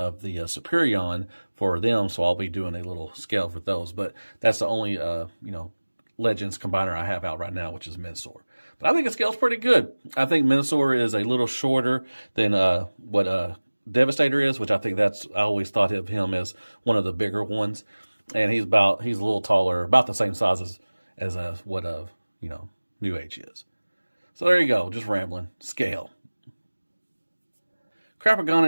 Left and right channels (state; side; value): inverted; both; correlation -1.00